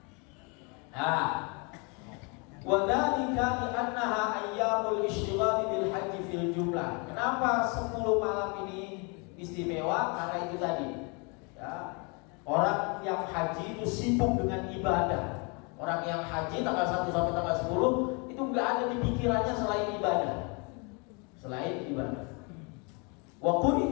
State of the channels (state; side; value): quieter; right; 32.5 dB